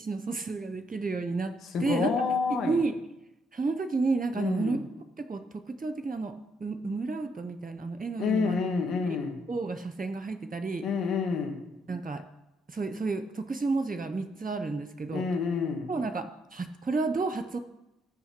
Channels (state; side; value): normal; both; correlation 0.74